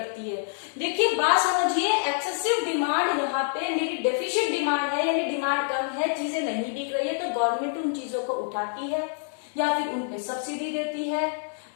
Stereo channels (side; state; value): right; silent; digital silence